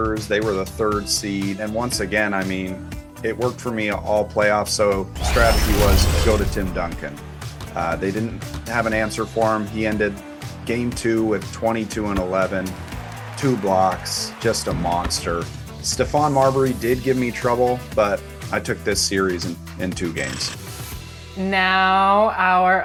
They were the 3rd seed. And once again, I mean, it worked for me all playoffs. So the strategy was go to Tim Duncan. They didn't have an answer for him. He ended game 2 with 22 and 11, 2 blocks, just a monster. Stephon Marbury did give me trouble, but I took this series in 2 games. Now our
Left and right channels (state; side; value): identical; both; correlation 1.00